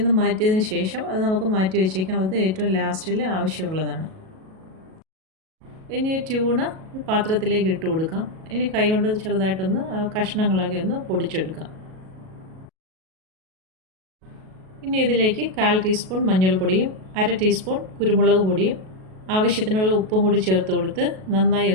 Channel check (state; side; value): late; left; 37 ms